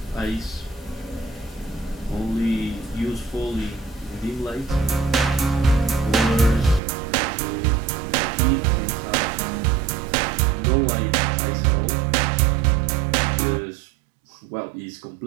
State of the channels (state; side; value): drops out; left; at 6.8 s